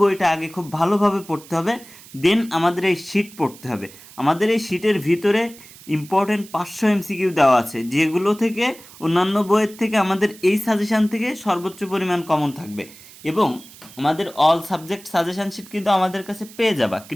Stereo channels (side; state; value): right; noise; hiss, 20 dB below the sound